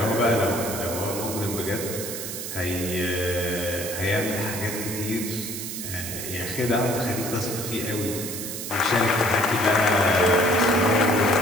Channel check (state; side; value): noise; right; hiss, 6 dB below the sound